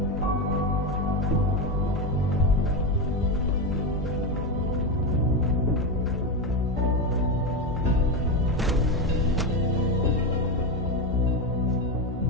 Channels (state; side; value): normal; both; correlation 0.13